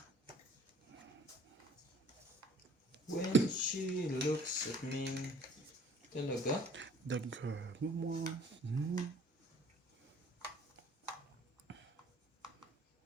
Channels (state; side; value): normal; both; correlation 0.53